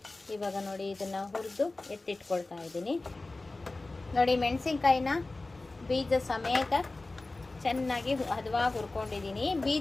ಇವಾಗ ನೋಡಿ, ಇದನ್ನು ಹುರಿದು ಎತ್ತಿಟ್ಕೊಳ್ತಾ ಇದ್ದೀನಿ ನೋಡಿ. ಮೆಣಸಿನ್ಕಾಯಿನ ಬೀಜ ಸಮೇತ ಚೆನ್ನಾಗಿ ಹದವಾಗಿ ಹುರ್ಕೊಂಡಿದ್ದೀನಿ.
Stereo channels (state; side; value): quieter; right; 3.1 dB